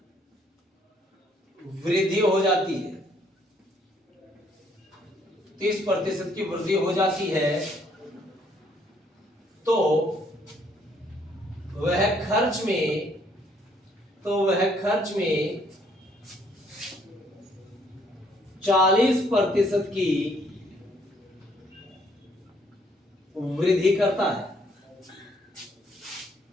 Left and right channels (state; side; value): normal; both; correlation 0.67